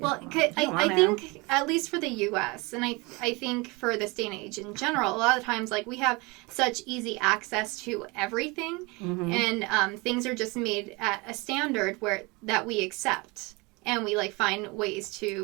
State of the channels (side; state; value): left; quieter; 26.1 dB